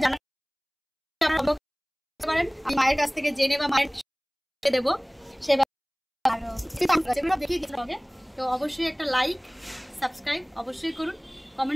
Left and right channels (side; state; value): both; identical; correlation 1.00